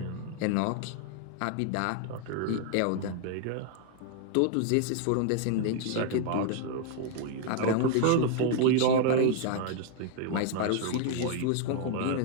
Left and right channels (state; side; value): different; both; correlation 0.00